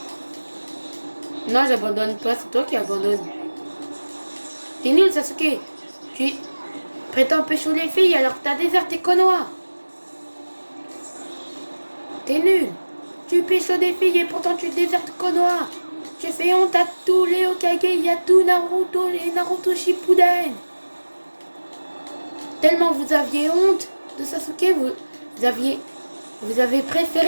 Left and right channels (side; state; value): both; inverted; correlation -1.00